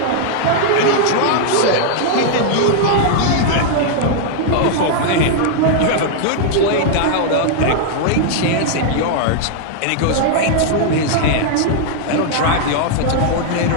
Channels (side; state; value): both; different; correlation -0.01